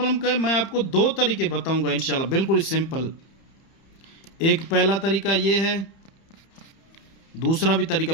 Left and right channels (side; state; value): right; late; 30 ms